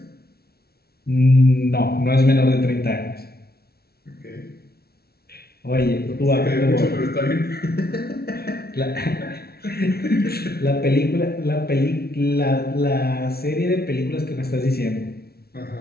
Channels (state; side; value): late; right; 0.45 ms